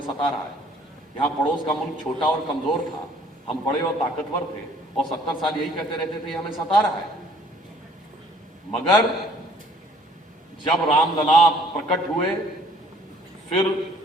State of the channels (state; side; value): normal; both; correlation 0.58